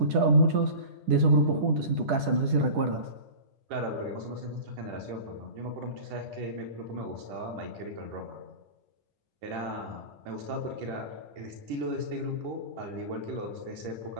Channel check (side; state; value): left; late; 10 ms